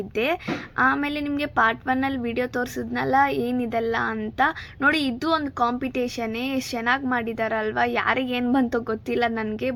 ಆಮೇಲೆ ನಿಮಗೆ ಪಾರ್ಟ್ 1ಅಲ್ಲಿ ವಿಡಿಯೋ ತೋರಿಸಿದ್ನಲ್ಲ ಏನಿದೆಲ್ಲ ಅಂತ ನೋಡಿ. ಇದು ಒಂದು ಕಾಂಪಿಟೇಷನ್ನೇ. ಎಷ್ಟು ಚೆನ್ನಾಗಿ ಮಾಡಿದಾರಲ್ವಾ. ಯಾರಿಗೆ ಏನು ಬಂತೋ ಗೊತ್ತಿಲ್ಲ ನನಗೆ,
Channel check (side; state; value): both; identical; correlation 1.00